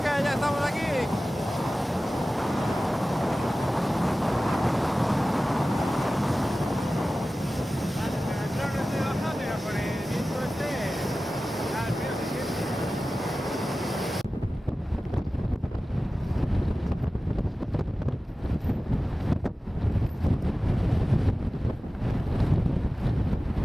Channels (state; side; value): normal; both; correlation 0.96